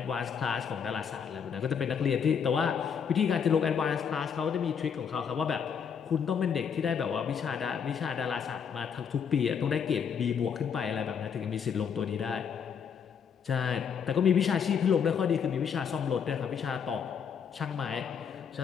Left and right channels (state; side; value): quieter; right; 7.1 dB